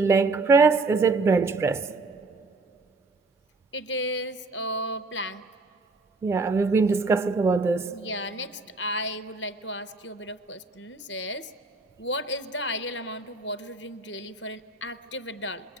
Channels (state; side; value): quieter; left; 3.5 dB